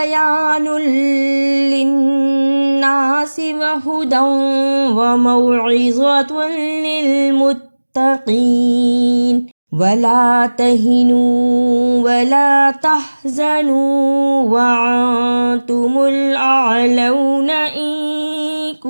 للناس وهدى وموعظة للمتقين ولا تهنوا ولا تحزنوا وأنتم الأعلون إن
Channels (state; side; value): inverted; both; correlation -1.00